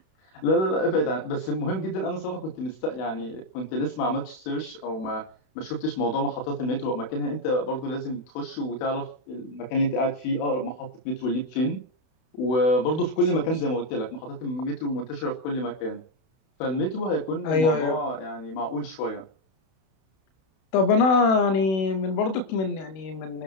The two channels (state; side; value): late; right; 32 ms